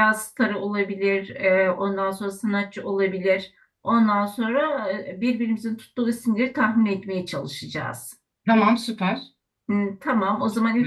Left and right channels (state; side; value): identical; both; correlation 1.00